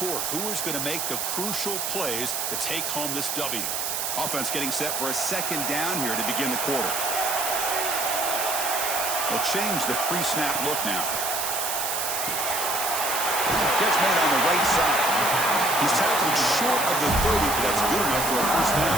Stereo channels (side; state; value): right; noise; hiss, 1 dB below the sound